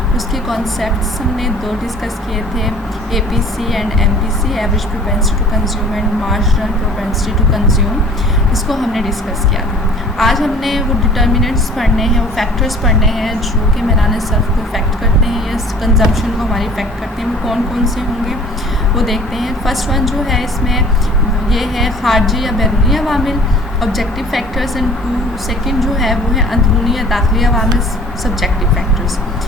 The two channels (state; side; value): normal; both; correlation 0.49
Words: اس کے کانسیپٹس ہم نے دو ڈسکس کیے تھے، اے پی سی and M P C, average propensity to consume and marginal propensity to consume, اس کو ہم نے ڈسکس کیا تھا۔ آج ہم نے وہ ڈٹرمنٹس پڑھنے ہیں، وہ فیکٹرز پڑھنے ہیں جو کہ میلان صرف کو افیکٹ کرتے ہیں یا کنزمپشن کو ہماری افیکٹ کرتے ہیں، وہ کون کون سے ہوں گے وہ دیکھتے ہیں۔ فرسٹ ون جو ہے اس میں یہ ہے خارجی یا بیرونی عوامل، آبجیکٹیو فیکٹرز، اینڈ سیکنڈ جو ہے وہ ہے اندرونی یا داخلی عوامل، سبجیکٹیو فیکٹرز۔